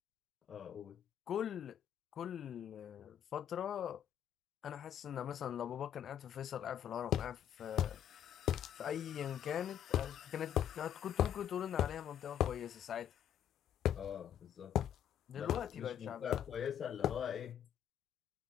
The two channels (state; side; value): quieter; right; 10.1 dB